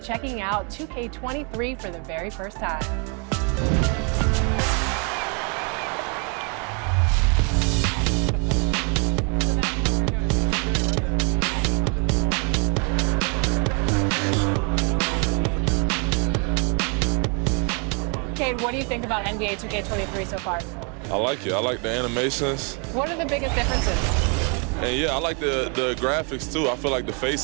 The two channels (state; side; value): quieter; left; 36.4 dB